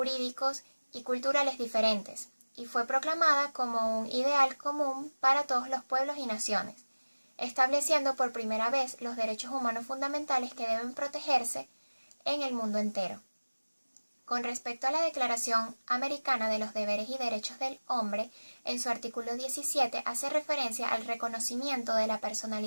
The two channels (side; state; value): both; inverted; correlation -1.00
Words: y culturales diferentes, y fue proclamada como un ideal común para todos los pueblos y naciones. estableciendo por primera vez los derechos humanos fundamentales que deben protegerse en el mundo entero. Con respecto a la Declaración Americana de los Deberes y Derechos del Hombre, en su artículo 17 hace referencia al reconocimiento de la